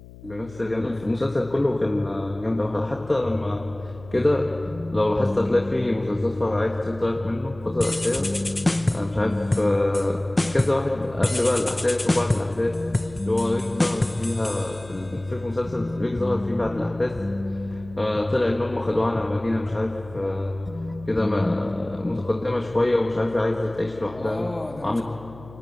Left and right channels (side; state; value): left; noise; hum, 19 dB below the sound